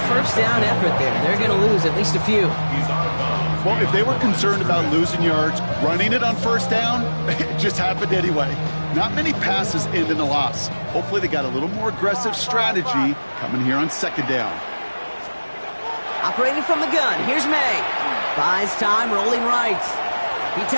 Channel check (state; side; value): inverted; both; correlation -1.00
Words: 1st down effort there. They're going to lose at least a few. Well, if they were concerned about losing yards, running it on 1st down, it just happened anyway. Not many passes end in a loss. Hopefully they got a little more aggressive strategy coming here on 2nd down. Operating from the gun, here's May. Buys time, rolling right. He